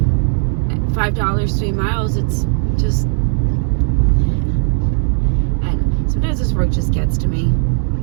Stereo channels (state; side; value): silent; left; 68 dB below the other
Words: 3 miles. It's just, and sometimes this work just gets to me.